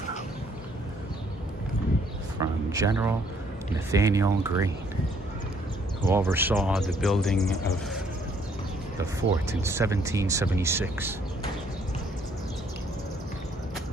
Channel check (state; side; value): normal; both; correlation 0.65